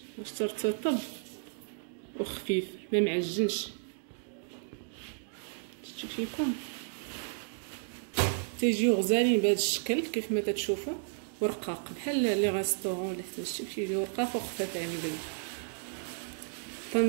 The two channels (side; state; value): left; silent; digital silence